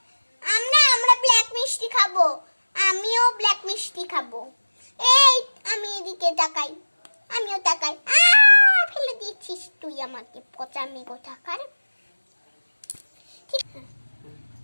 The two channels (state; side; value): inverted; both; correlation -1.00